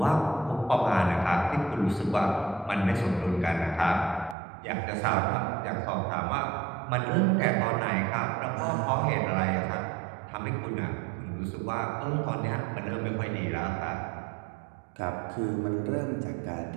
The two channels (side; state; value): left; drops out; at 4.4 s